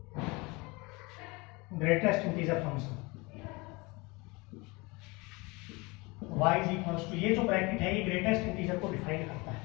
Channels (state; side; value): quieter; right; 25.5 dB